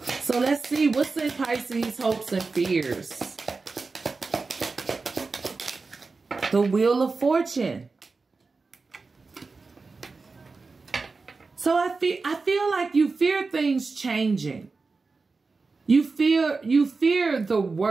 So let's see what's in Pisces' hopes and fears. The Wheel of Fortune. So I feel like you fear things changing. You fear the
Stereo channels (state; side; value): quieter; left; 4.1 dB